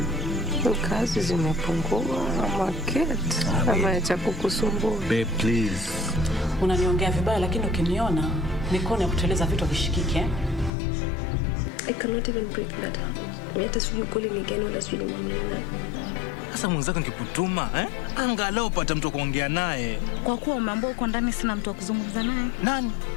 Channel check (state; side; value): drops out; right; at 10.7 s